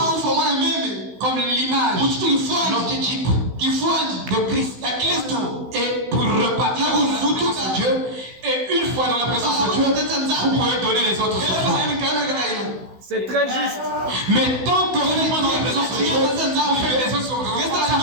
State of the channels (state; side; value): late; left; 16 ms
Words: comme l'image l'archétype de Christ. Et pour repartir dans la présence de Dieu, et une fois dans la présence de Dieu, vous pouvez donner les autres offrandes. C'est très juste. Mais tant que vous n'êtes pas dans la présence de Dieu, vous faites les autres offrandes, ça ne